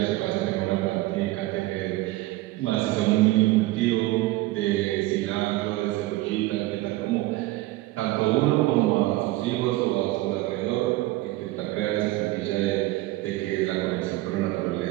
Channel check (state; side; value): quieter; left; 18.2 dB